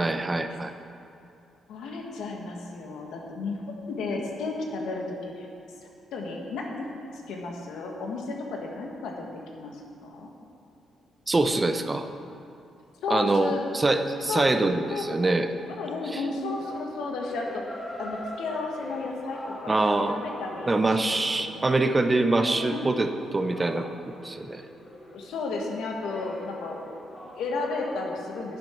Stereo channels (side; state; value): both; normal; correlation 0.86